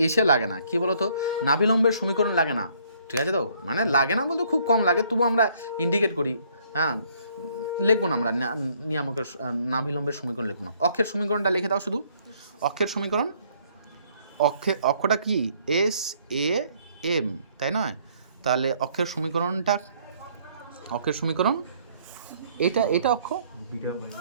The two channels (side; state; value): both; inverted; correlation -0.64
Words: এসে লাগে না, কি বলো তো, নাভিলম্বের সমীকরণ লাগে না, ঠিক আছে তো? মানে লাগে না বলতে খুব কম লাগে, তবু আমরা ইন্ডিকেট করি। হ্যাঁ, লিখবো না আমরা নিয়ামকের নাভিলম্বের সমীকরণ লিখবো না। অক্ষের সমীকরণটা লিখে দাও শুধু। অক্ষের সমীকরণ অক্ষটা কি এস এ এম, তাই নয়? তাহলে অক্ষের সমীকরণ এটা অক্ষ,